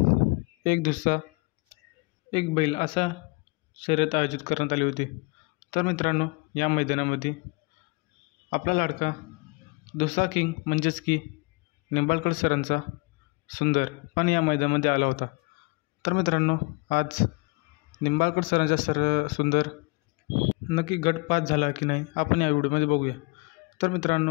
एक दुसरा एक बैल असा शर्यत आयोजित करण्यात आली होती. तर मित्रांनो, या मैदानामध्ये आपला लाडका दुसरा किंग म्हणजेच की निंबाळकर सरांचा सुंदर पण या मैदानामध्ये आला होता. तर मित्रांनो, आज निंबाळकर सरांचा सुंदर नक्की गट पास झाला की नाही आपण या व्हिडिओमध्ये बघूया. तर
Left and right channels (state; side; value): quieter; right; 29.2 dB